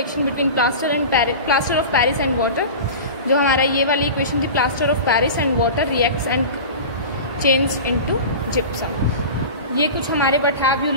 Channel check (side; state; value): both; inverted; correlation -0.32